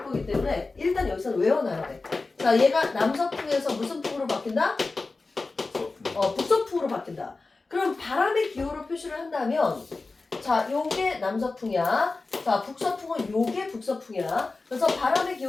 거기 때문에 일단 여기서는 외워놔야 돼. 자, 얘가 남서풍에서 무슨 풍으로 바뀐다? 북서풍으로 바뀐다. 그럼 바람의 기호로 표시를 한다면, 자, 요게 남서풍이야. 자, 북서풍은 요게 북서풍이야. 그래서 바람의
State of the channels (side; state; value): right; quieter; 3.7 dB